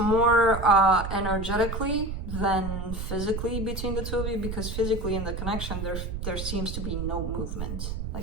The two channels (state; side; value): noise; right; rumble, 5 dB below the sound